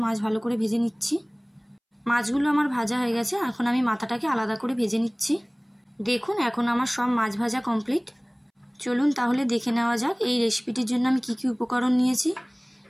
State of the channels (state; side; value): identical; both; correlation 1.00